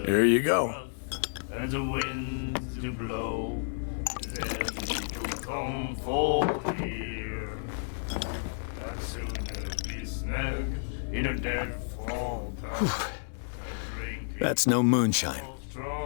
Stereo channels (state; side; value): silent; right; digital silence